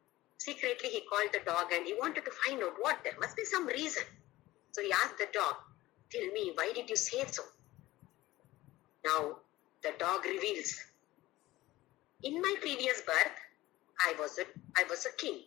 secretly he called the dog and he wanted to find out what, there must be some reason. So he asked the dog, tell me, why did you say so? Now, the dog reveals, in my previous birth, I was a king.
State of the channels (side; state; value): right; quieter; 17.5 dB